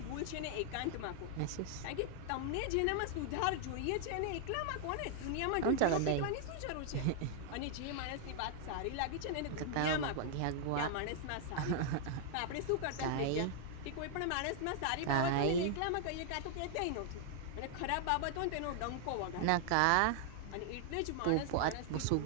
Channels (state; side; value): different; both; correlation 0.00